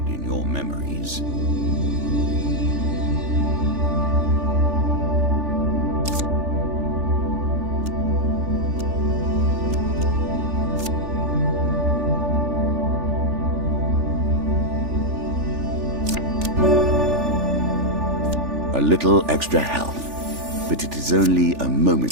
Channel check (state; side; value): late; left; 3.4 ms